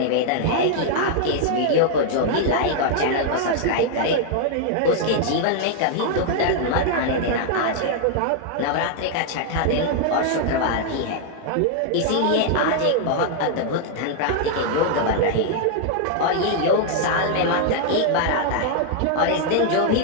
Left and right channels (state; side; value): different; both; correlation 0.00